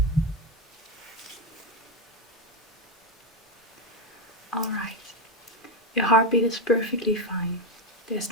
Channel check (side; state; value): both; normal; correlation 0.11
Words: Alright, your heartbeat is perfectly fine. There's